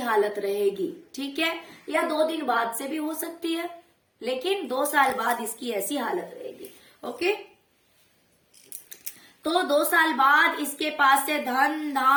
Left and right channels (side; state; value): both; identical; correlation 1.00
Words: रहेगी, ठीक है, या 2 दिन बाद से भी हो सकती है, लेकिन 2 साल बाद इसकी ऐसी हालत रहेगी। ओके, तो 2 साल बाद इसके पास से धन